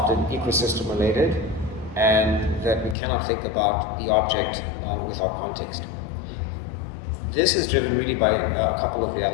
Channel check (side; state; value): right; drops out; at 3.0 s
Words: ecosystem related, and that we cannot think about the object without context. This is driven really by a couple of